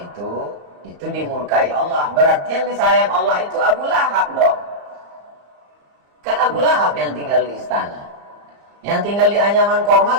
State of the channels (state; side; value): late; left; 34 ms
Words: dimurkai Allah, berarti yang disayang Allah itu Abu Lahab dong. Kan Abu Lahab yang tinggal di istana. Yang tinggal di anyaman